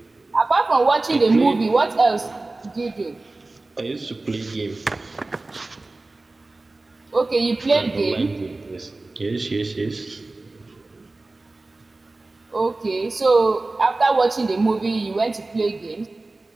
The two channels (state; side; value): quieter; left; 3.2 dB